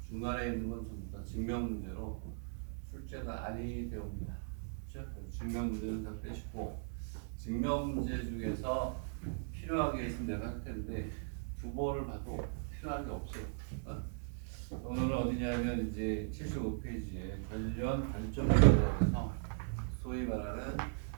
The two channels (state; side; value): silent; left; digital silence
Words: 중간에 있는 건 전부 다 증명 문제로 출제는 아니 되옵니다. 그렇죠? 증명 문제는 다 빼시고 증명 문제 중에서 필요한 게 있으면 내가 할 텐데 두 번을 봐도 필요한 게 없어요. 오늘은 어디냐면 이제 75페이지에 관련 발전에 대해서 소위 말하는